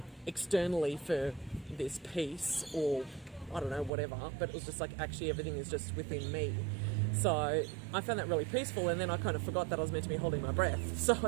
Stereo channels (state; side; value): drops out; left; at 3.9 s